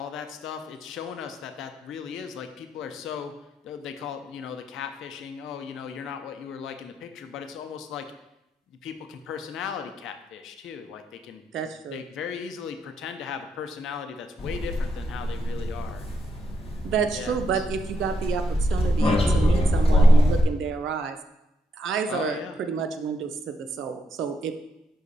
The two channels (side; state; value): both; normal; correlation 0.79